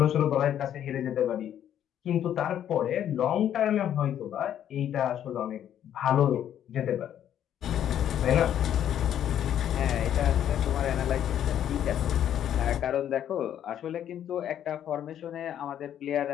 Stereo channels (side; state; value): right; quieter; 10.3 dB